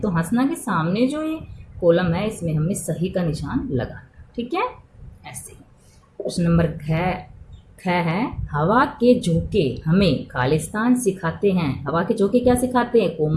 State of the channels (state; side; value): identical; both; correlation 1.00